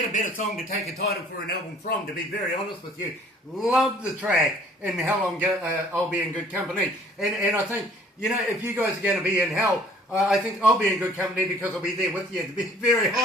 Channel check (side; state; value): both; normal; correlation 0.55